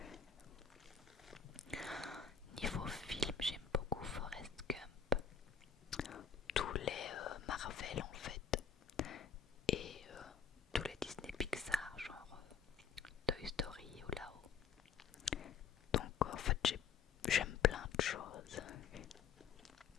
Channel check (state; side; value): quieter; right; 6.7 dB